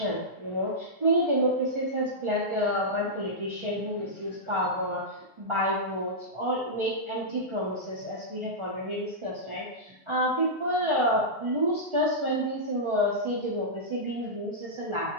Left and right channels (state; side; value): normal; both; correlation -0.12